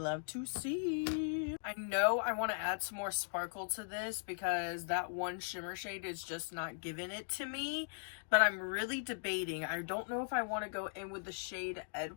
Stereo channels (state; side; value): silent; right; digital silence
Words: to see. I know I want to add some more sparkle to this because that one shimmer shade is just not giving it to me, but I'm really debating. I don't know if I want to go in with the shade